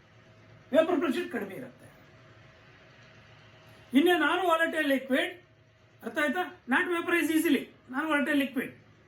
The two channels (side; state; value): both; identical; correlation 1.00